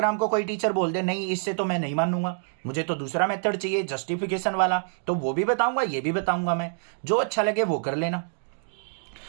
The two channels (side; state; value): left; silent; digital silence